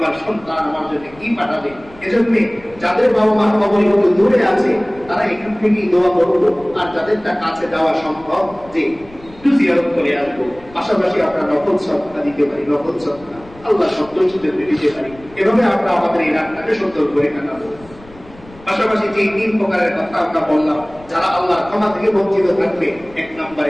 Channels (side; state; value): left; noise; rumble, 23 dB below the sound